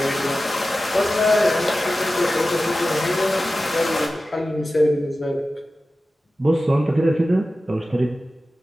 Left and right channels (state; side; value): normal; both; correlation 0.94